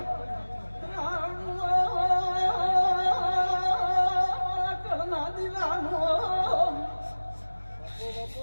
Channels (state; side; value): inverted; both; correlation -1.00